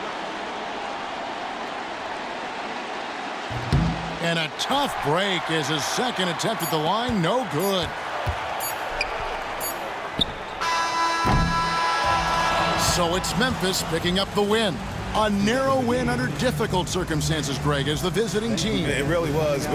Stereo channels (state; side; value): identical; both; correlation 1.00